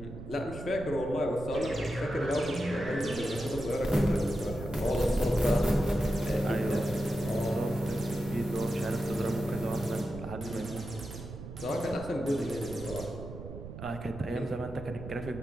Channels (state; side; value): noise; right; rumble, 11 dB below the sound